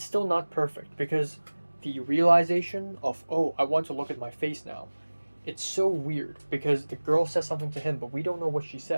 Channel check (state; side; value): inverted; both; correlation -1.00